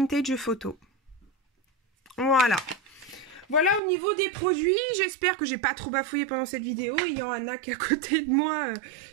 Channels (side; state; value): left; drops out; at 3.8 s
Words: Photo. Voilà. Voilà au niveau des produits, j'espère que j'ai pas trop bafouillé pendant cette vidéo. Il y a Anna qui est à côté de moi,